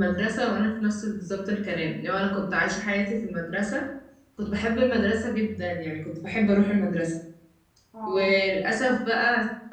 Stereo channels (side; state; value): both; identical; correlation 1.00